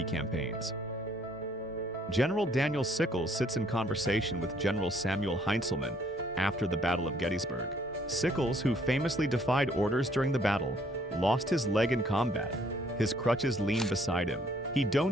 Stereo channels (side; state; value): both; normal; correlation 0.64